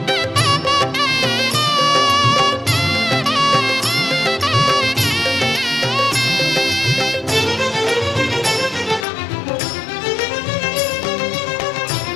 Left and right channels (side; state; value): right; drops out; at 9.1 s